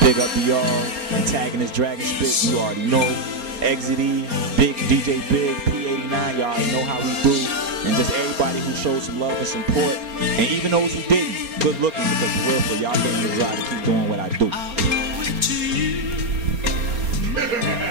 big up to y'all. Antagonist, Dragon Spit. You already know. Exit E, Big DJ Big, P89. Y'all already know how we do. And just everybody who showed some love and support, and even those who didn't, good looking, because for real, y'all gave me the drive to keep doing what I do.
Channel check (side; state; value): left; late; 4.3 ms